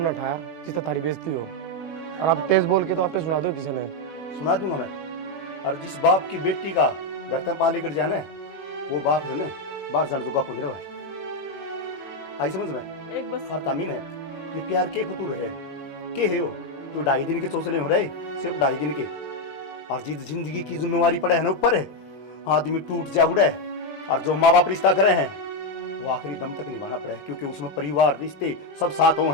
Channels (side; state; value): right; late; 20 ms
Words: उठाया जिससे तारी बेइज्जती हो, और आप तेज बोल के तो आपने सुना दो किसी ने। सुना दूंगा मैं। और जिस बाप की बेटी का घर तक पाली कर जाने, वो बाप है ना बाहर जाने चुका को नहीं आई समझ में। एक बस हर तामीन है ये प्यार के फतूर है के है वो तो 2.5 दिन के चौसले हो रहे, सिर्फ 2.5 दिन के। और जिस जिंदगी की जिम्मेवारी पड़े है ना ऊपर है, आदमी टूट जा उड़े, और जो माँ बाप रिश्ता करे हैं वो आखिरी दम तक निभाना पड़े, क्योंकि उसमें परिवार रिश्ते सब साथ हो